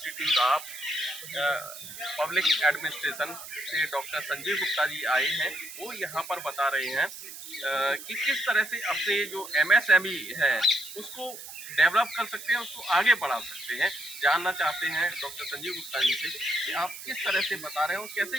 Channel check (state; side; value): noise; right; hiss, 12 dB below the sound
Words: of public administration से डॉक्टर संजीव गुप्ता जी आए हैं। वो यहाँ पर बता रहे हैं कि किस तरह से अपने जो एमएसएमई है उसको डेवलप कर सकते हैं, उसको आगे बढ़ा सकते हैं। जानना चाहते हैं डॉक्टर संजीव गुप्ता जी से कि आप किस तरह से बता रहे हो, कैसे